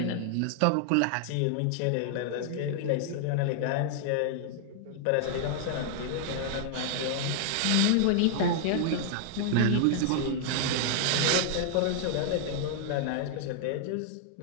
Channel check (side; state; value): both; different; correlation -0.01